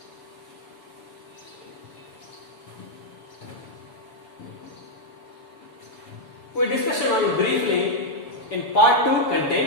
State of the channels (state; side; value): late; right; 7.0 ms